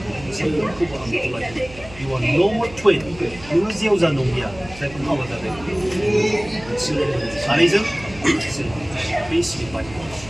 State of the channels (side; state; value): right; noise; hum, 18 dB below the sound